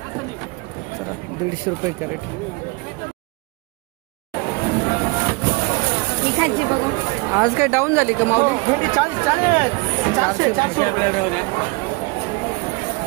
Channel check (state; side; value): quieter; left; 27.3 dB